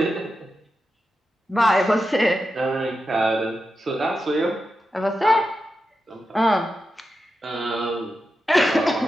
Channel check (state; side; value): normal; both; correlation 0.89